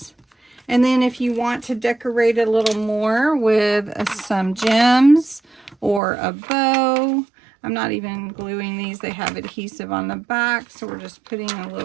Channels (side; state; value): left; drops out; at 6.0 s